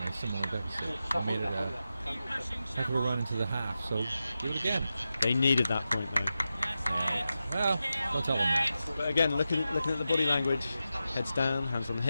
similar deficit. They made it a heck of a run into the half, so do it again. They needed that point though. Well, don't tell them that. But again, looking at the body language, heads down, hands on the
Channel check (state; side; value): inverted; both; correlation -0.91